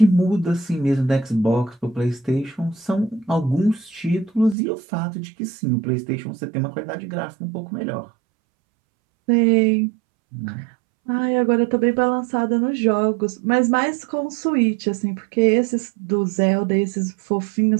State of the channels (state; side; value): drops out; left; at 4.5 s